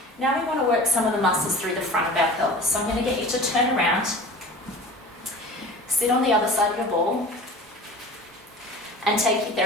Now we want to work some of the muscles through the front of our pelvis. So I'm going to get you to turn around, sit on the other side of your ball, and take your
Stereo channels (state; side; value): normal; both; correlation 0.40